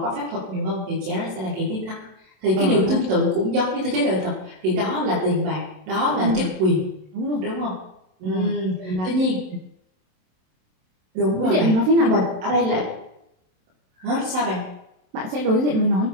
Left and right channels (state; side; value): late; left; 27 ms